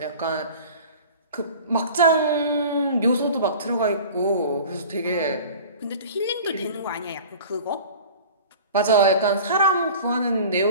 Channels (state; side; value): inverted; both; correlation -0.40